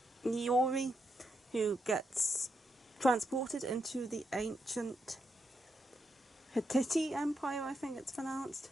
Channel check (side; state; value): both; normal; correlation 0.82